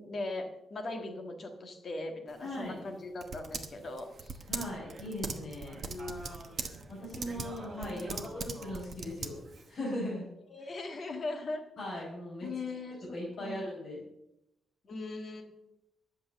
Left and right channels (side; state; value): both; normal; correlation 0.77